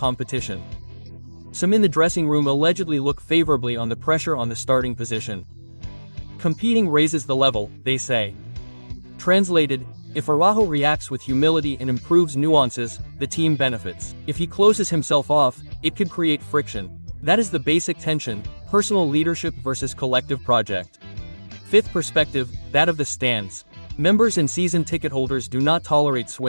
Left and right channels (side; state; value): both; inverted; correlation -1.00